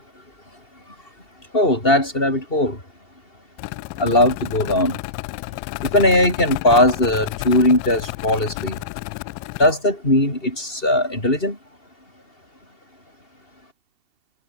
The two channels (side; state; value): right; late; 2.7 ms